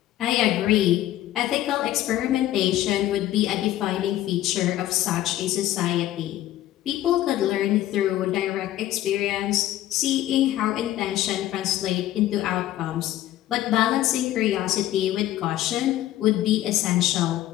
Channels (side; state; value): right; quieter; 13.9 dB